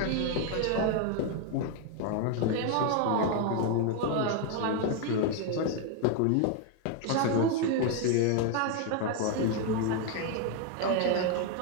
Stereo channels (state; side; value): different; both; correlation 0.01